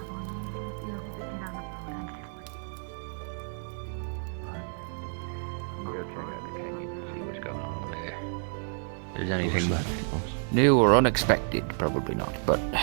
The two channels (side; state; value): left; silent; 58 dB below the other